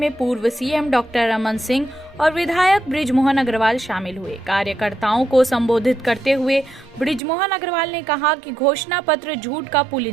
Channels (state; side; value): drops out; left; at 7.2 s